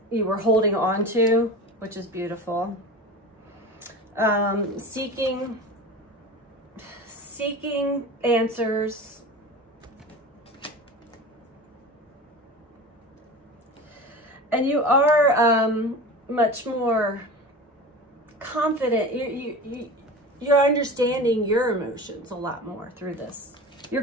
you were holding on to, which is beautiful. Seeking answers. And you are much more confident. You're understanding your emotions a lot more through this. You're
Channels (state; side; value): normal; both; correlation 0.32